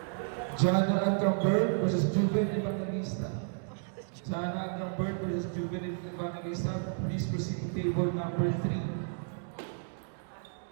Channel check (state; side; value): silent; left; digital silence